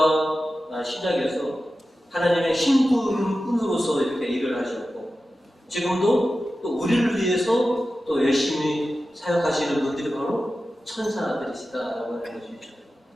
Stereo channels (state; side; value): normal; both; correlation 0.93